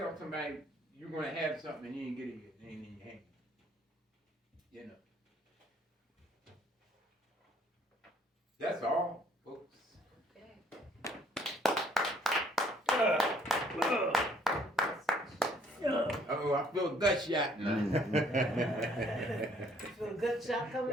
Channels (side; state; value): both; normal; correlation 0.63